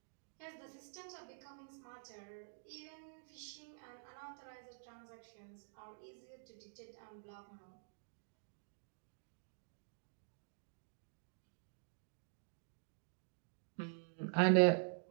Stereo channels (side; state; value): left; silent; digital silence